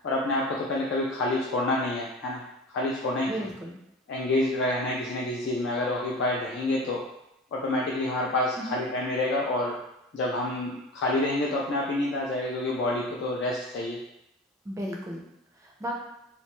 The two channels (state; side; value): normal; both; correlation 0.34